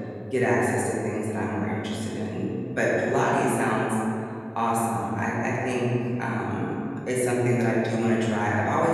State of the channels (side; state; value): both; identical; correlation 1.00